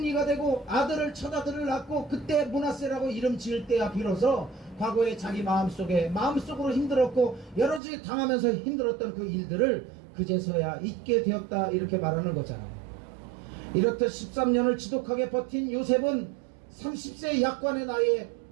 되고 아들을 첫 아들을 낳고 그때 므낫세라고 이름 지을 때야 비로소 과거에 자기 마음속으로 힘들었고 여러 가지 당하면서 힘들었던 그 일들을 그제서야 잊게 되었다 이렇게 말하는 거잖아요. 이렇듯 13년을 지독하게 버틴 요셉은 30세 약관의 나이에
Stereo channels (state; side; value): drops out; left; at 7.8 s